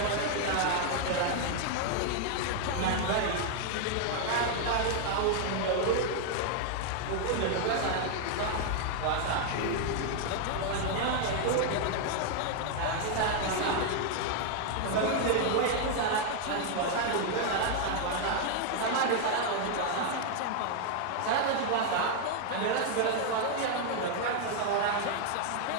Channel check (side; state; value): both; different; correlation 0.00